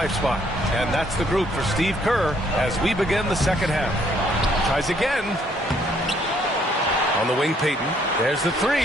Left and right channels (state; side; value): normal; both; correlation 0.66